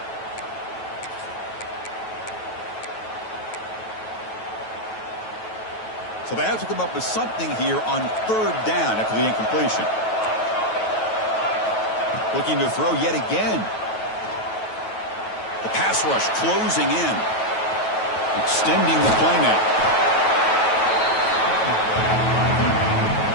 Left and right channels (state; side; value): late; right; 9.2 ms